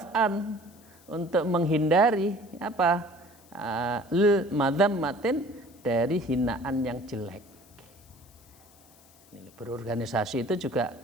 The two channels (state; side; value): noise; left; hiss, 27 dB below the sound